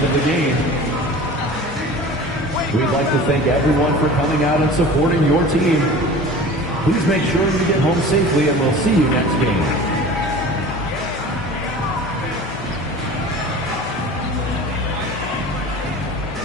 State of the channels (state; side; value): normal; both; correlation 0.39